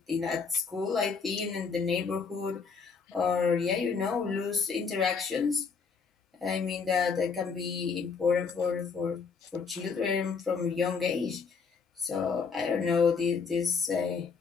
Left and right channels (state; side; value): quieter; right; 5.4 dB